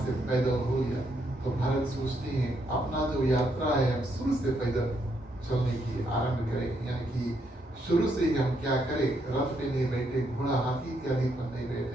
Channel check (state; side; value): normal; both; correlation 0.76